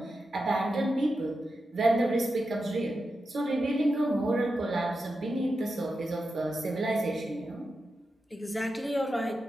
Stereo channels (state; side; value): normal; both; correlation 0.89